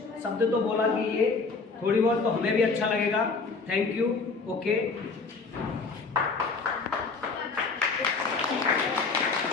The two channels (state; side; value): quieter; right; 4.4 dB